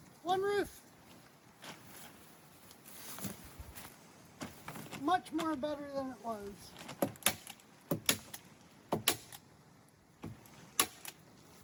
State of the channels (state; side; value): identical; both; correlation 1.00